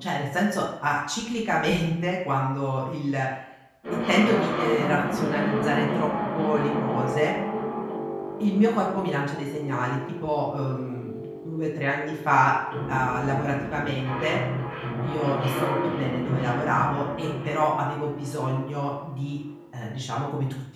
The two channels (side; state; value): both; identical; correlation 1.00